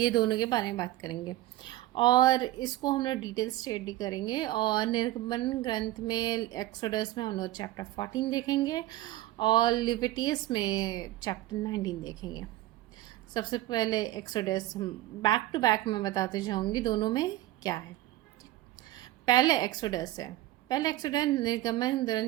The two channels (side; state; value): left; quieter; 15.9 dB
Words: दोनों के बारे में बात करेंगे और इसको हम लोग डिटेल स्टडी करेंगे। और निर्गमन ग्रंथ में एक्सोडस में हम लोग चैप्टर 14 देखेंगे और लेविटियस में चैप्टर 19 देखेंगे। सबसे पहले एक्सोडस हम बैक टू बैक में बताते जाऊंगी दोनों में क्या है। पहले एक्सोडस है। पहले एक्सोडस निर्गमन